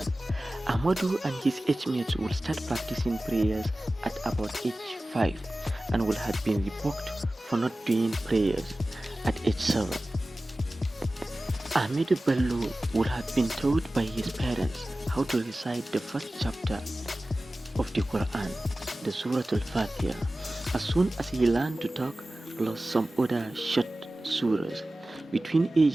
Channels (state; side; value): normal; both; correlation 0.96